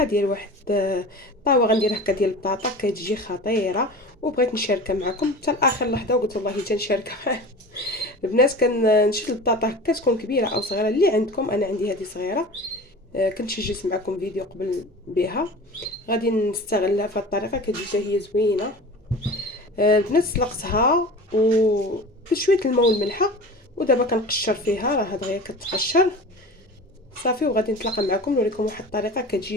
ديال واحد طاوه غندير هكا ديال البطاطا كتجي خطيره، وبغيت نشاركها معكم حتى لاخر لحظه، وقلت والله تنشاركها معكم. البنات كنشد البطاطا هكا تكون كبيره او صغيره اللي عندكم، انا عندي هذه صغيره. كنت سجلت معكم فيديو قبل بها، غادي نستغلها في هذه الطريقه كتجي حتى هي زوينه. البنات سلقتها و بشويه الماء والملحه، ودابا كنقشر فيها، راه دغيا كتقشر صافي. وغادي نتلاقى معكم نوريكم واحد الطريقه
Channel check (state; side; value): normal; both; correlation 0.36